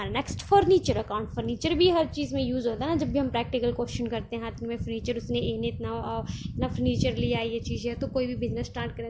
नेक्स्ट फर्नीचर अकाउंट। फर्नीचर भी हर चीज़ में यूज़ होता है ना, जब भी हम प्रैक्टिकल क्वेश्चन करते हैं हाथ में फर्नीचर, उसने इतना फर्नीचर लिया, ये चीज़ है, तो कोई भी बिजनेस स्टार्ट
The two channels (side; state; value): both; identical; correlation 1.00